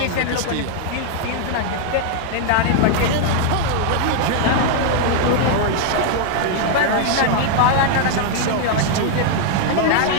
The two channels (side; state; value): both; different; correlation 0.00